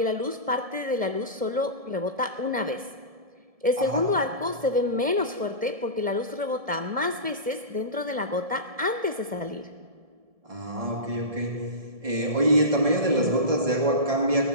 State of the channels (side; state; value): left; late; 1.7 ms